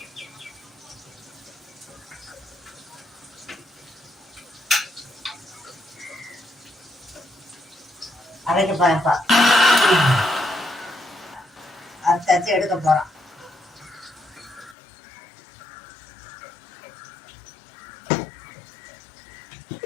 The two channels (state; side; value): drops out; right; at 14.8 s